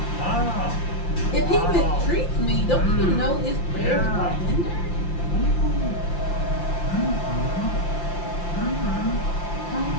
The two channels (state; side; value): late; right; 5.8 ms